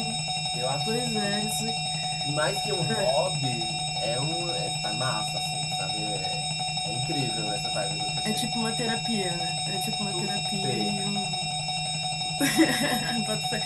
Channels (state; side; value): noise; left; hum, 24 dB below the sound